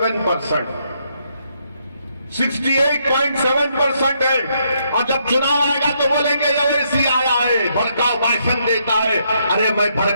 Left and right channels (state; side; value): inverted; both; correlation -0.75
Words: 68.7% है। और जब चुनाव आएगा तो बोलेंगे ओवैसी आया है, भड़काऊ भाषण देता है। अरे मैं